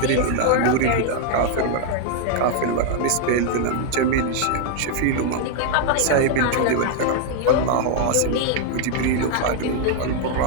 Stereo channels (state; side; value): different; both; correlation 0.00